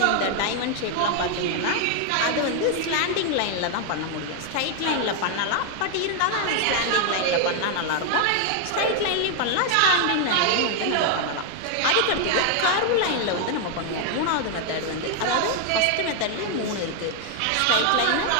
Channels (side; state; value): both; different; correlation 0.00